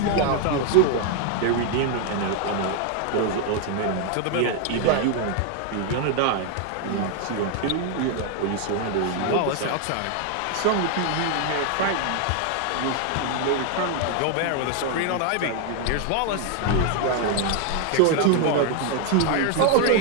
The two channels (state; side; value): different; both; correlation 0.00